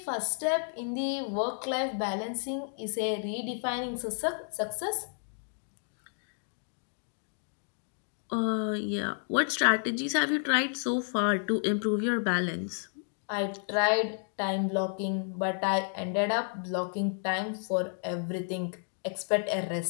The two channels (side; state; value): right; silent; 57 dB below the other